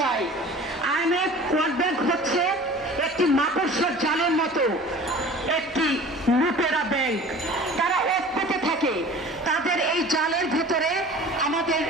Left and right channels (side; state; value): both; normal; correlation 0.43